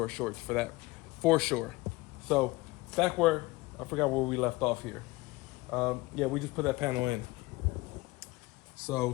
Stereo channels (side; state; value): right; quieter; 21.3 dB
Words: our shorts for that, for sure. So back where I forgot where we left off here. Yeah, we just put that panel in.